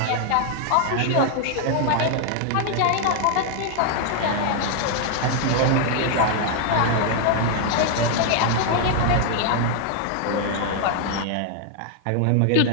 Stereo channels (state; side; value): different; both; correlation 0.00